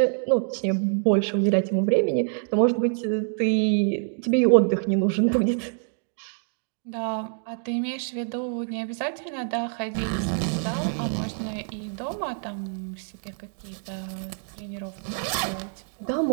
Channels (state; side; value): silent; left; 57 dB below the other